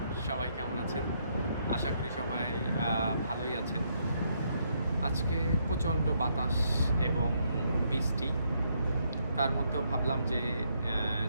সবাই কেমন আছেন? আশা করি সবাই ভালোই আছেন। আজকে প্রচণ্ড বাতাস এবং বৃষ্টি, তার মধ্যেও ভাবলাম যে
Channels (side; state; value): both; inverted; correlation -0.74